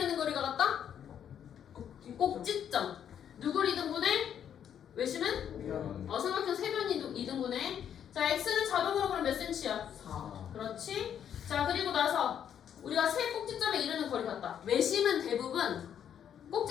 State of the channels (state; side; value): quieter; right; 9.1 dB